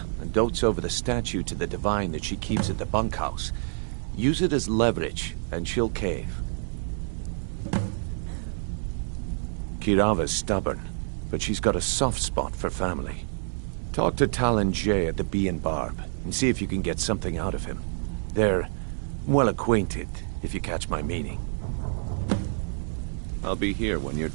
and dotes over the statue to the divine that she keeps at the bunkhouse. Use it as leverage, and she'll cave. Kirava's stubborn, but she's got a soft spot for family. Talk to Talon Jay at the Bee and Barb, and see if you can get something out of him. They're well acquainted, if you catch my meaning. I'll be here when you're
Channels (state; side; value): silent; left; digital silence